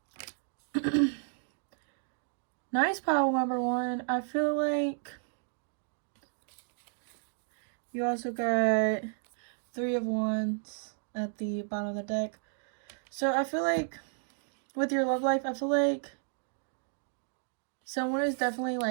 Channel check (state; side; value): silent; left; digital silence